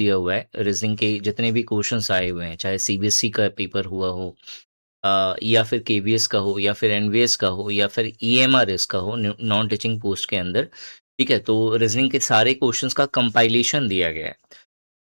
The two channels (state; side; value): inverted; both; correlation -1.00